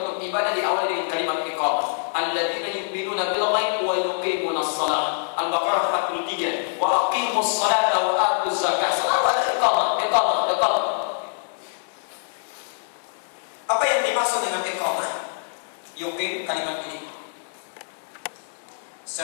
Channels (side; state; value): right; silent; digital silence